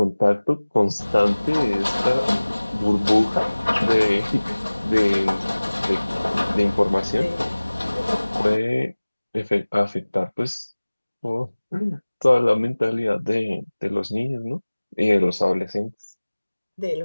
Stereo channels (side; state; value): both; inverted; correlation -1.00